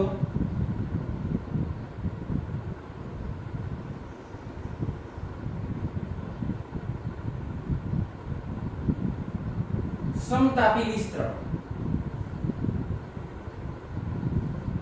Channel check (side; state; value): both; identical; correlation 1.00